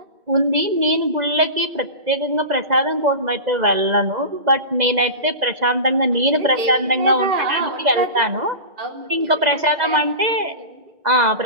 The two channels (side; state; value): left; late; 2.0 ms